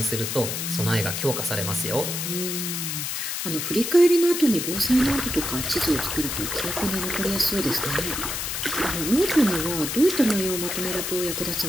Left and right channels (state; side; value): noise; left; hiss, 3 dB below the sound